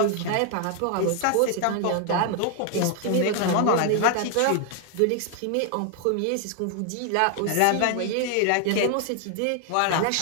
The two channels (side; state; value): both; different; correlation 0.00